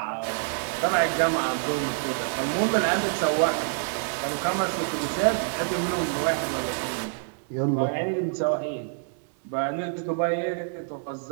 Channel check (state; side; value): silent; left; 60 dB below the other